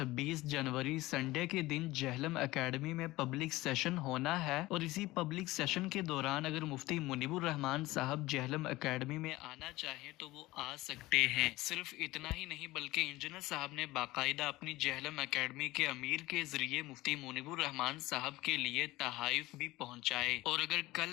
جنوری سنڈے کے دن جہلم اکیڈمی میں پبلک سیشن ہونا ہے اور اسی پبلک سیشن کے دوران اگر مفتی منیب الرحمان صاحب جہلم اکیڈمی میں آنا چاہیں تو وہ آ سکتے ہیں۔ صرف اتنا ہی نہیں بلکہ انجینئر صاحب نے باقاعدہ اپنی جہلم اکیڈمی کے امیر کے ذریعے مفتی منیب الرحمان صاحب کے لیے تحائف بھی پہنچائے، اور اگر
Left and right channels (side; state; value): right; quieter; 18.8 dB